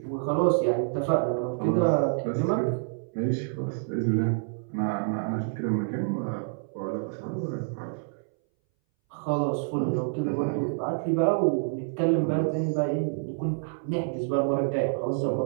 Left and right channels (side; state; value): left; silent; 60 dB below the other